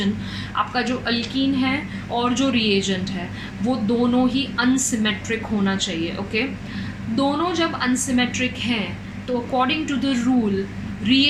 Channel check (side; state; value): both; identical; correlation 1.00